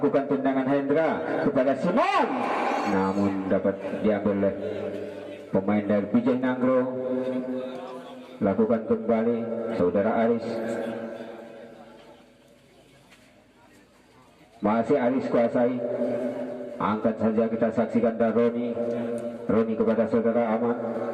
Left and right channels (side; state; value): both; identical; correlation 1.00